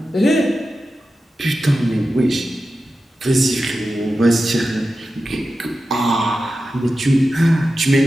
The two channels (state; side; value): normal; both; correlation 0.92